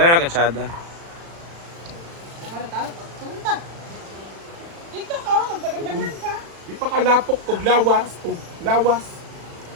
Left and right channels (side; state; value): left; late; 36 ms